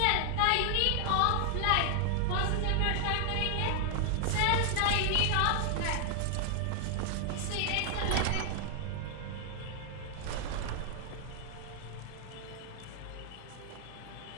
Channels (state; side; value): different; both; correlation 0.00